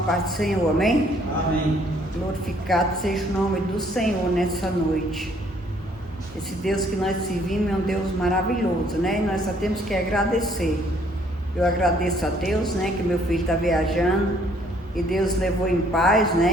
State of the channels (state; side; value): normal; both; correlation 0.63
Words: do Senhor, amém? Amém. Glorificado seja o nome do Senhor nessa noite. Esse Deus que nós servimos é um Deus maravilhoso, né? E nós só temos que agradecer. Eu agradeço a Deus, né? Que meu filho está viajando e Deus levou em paz,